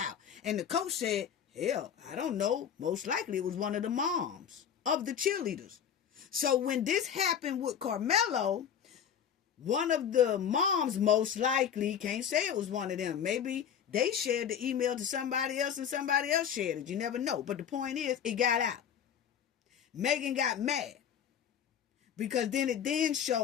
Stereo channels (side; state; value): right; quieter; 8.4 dB